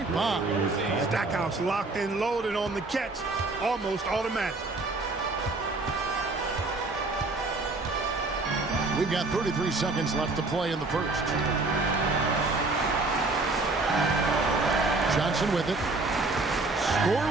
bomb. Stackhouse locked in, loaded on the catch. Almost automatic. We've got 33 seconds left to play in the first. Johnson with it.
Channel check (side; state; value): left; quieter; 3.4 dB